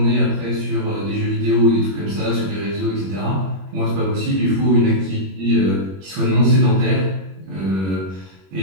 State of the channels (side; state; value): left; late; 21 ms